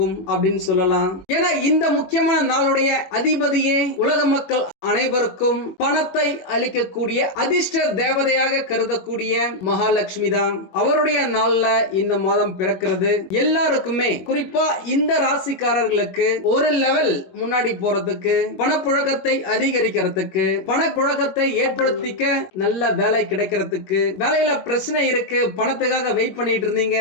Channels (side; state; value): right; late; 21 ms